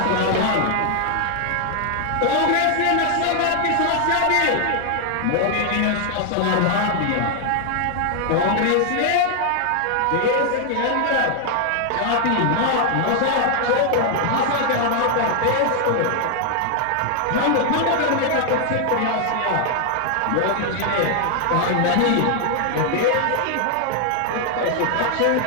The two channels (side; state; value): both; different; correlation 0.00